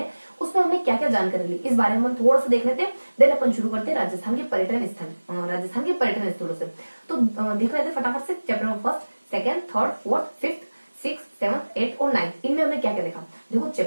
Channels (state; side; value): inverted; both; correlation -1.00